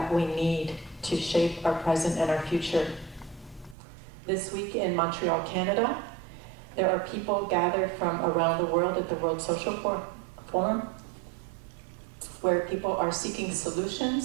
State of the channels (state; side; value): drops out; left; at 3.8 s